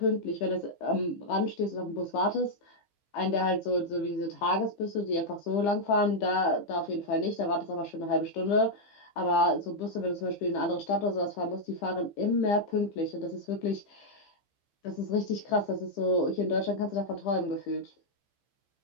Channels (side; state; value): right; late; 15 ms